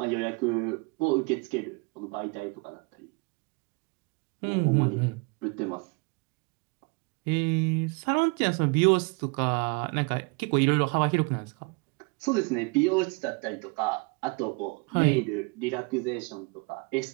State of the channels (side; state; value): left; quieter; 30.7 dB